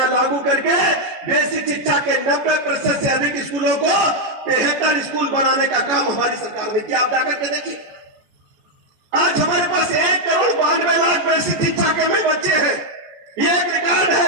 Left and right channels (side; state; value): left; late; 14 ms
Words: लागू करके बेसिक शिक्षा के 90% से अधिक स्कूलों को 73 स्कूल बनाने का काम हमारी सरकार ने किया। आप जाकर के देखिए, आज हमारे पास 1,92,00,000 बेसिक शिक्षा के में बच्चे हैं। ये एक रिकॉर्ड